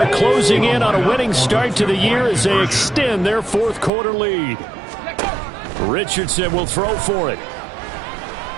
closing in on a winning start to the year as they extend their fourth quarter lead. Richardson will throw for it.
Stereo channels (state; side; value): drops out; left; at 3.9 s